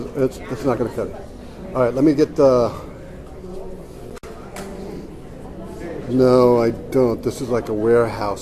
it's not going to cut it. All right, let me get the. No, I don't. This is like a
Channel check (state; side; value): identical; both; correlation 1.00